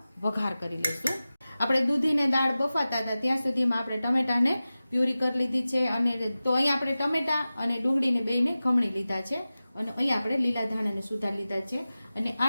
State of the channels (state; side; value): inverted; both; correlation -0.96